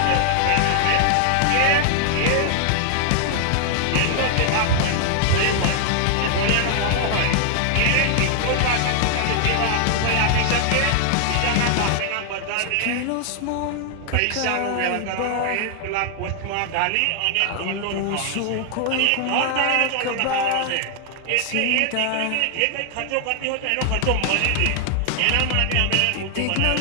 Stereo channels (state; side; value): different; both; correlation 0.00